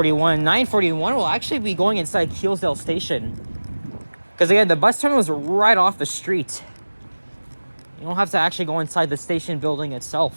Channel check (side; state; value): both; inverted; correlation -1.00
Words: 941 will actually be going inside Keelsdale Station. Because again, the bus terminal is right off the street. You don't have to actually go inside the station building